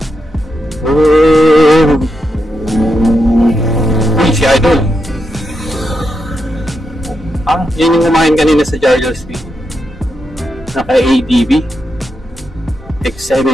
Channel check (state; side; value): normal; both; correlation 0.84